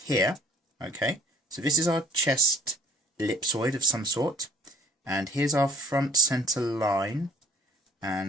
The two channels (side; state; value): both; normal; correlation 0.55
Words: here. Okay, so this is our chest ellipsoid of some sort, and here's our front center line,